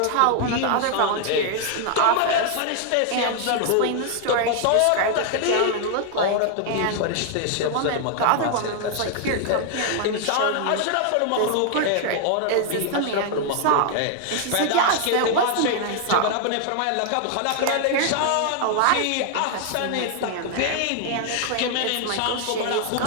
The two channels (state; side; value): different; both; correlation 0.00